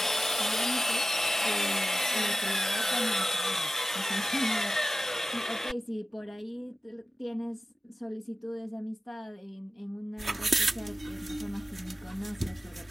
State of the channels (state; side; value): normal; both; correlation 0.94